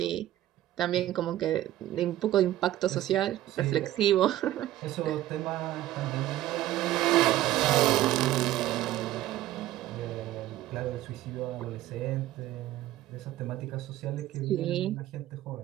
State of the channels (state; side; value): quieter; left; 14.2 dB